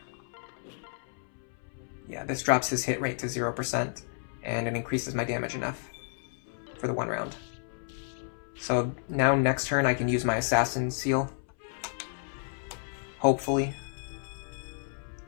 Yeah, this drops his hit rate to 0%, and it increases my damage enough for the 1 round. So now next turn I can use my Assassin Seal. Hopefully.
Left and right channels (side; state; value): right; silent; 57 dB below the other